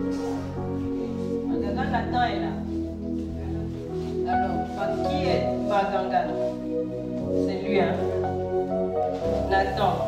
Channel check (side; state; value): both; identical; correlation 1.00